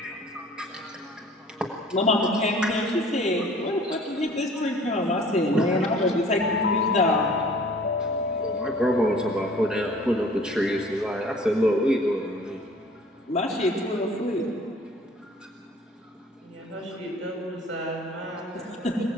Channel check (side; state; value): both; normal; correlation 0.50